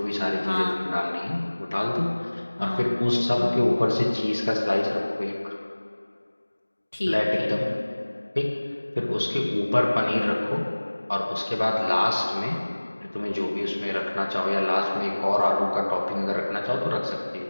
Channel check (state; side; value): inverted; both; correlation -1.00